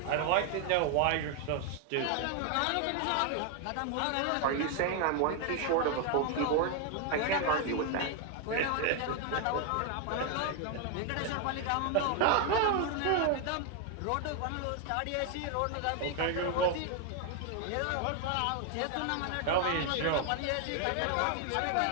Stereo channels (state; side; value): different; both; correlation 0.00